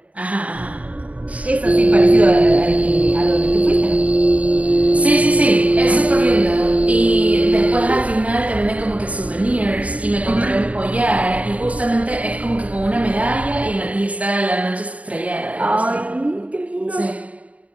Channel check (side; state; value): left; late; 0.068 ms